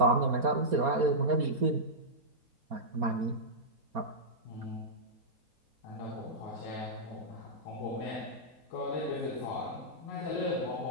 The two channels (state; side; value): late; left; 4.3 ms